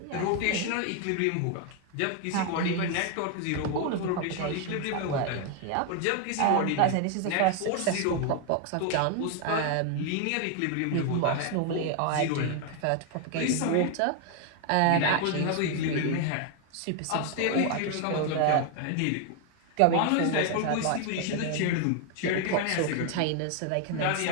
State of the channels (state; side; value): different; both; correlation 0.01